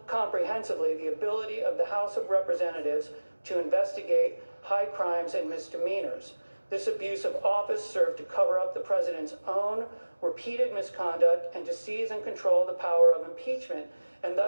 comprehensively the ability of the House of Representatives to investigate high crimes and misdemeanors. This abuse of office served to cover up the president's own repeated misconduct and to seize and control the power of impeachment, and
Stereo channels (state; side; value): inverted; both; correlation -1.00